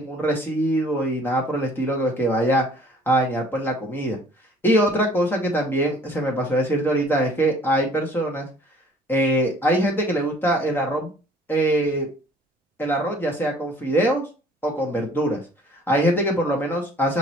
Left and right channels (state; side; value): normal; both; correlation 0.54